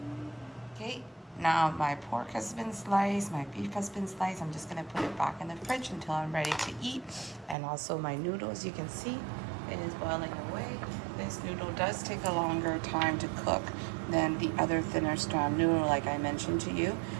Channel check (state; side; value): drops out; left; at 7.6 s